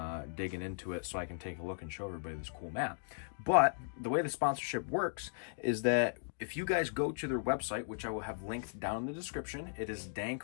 digging into it so I can take a look and show everybody this cool mat. But the way the sponsorship works is that if you guys go to their website, which I will have linked down in the description, it is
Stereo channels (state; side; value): silent; right; digital silence